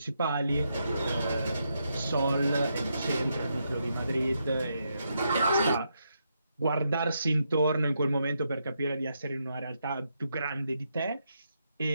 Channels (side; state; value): both; inverted; correlation -0.81